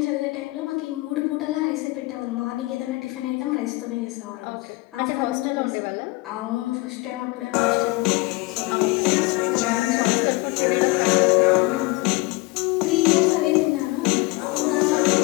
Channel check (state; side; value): quieter; right; 23.0 dB